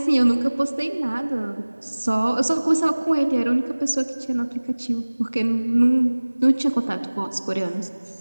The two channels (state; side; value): inverted; both; correlation -1.00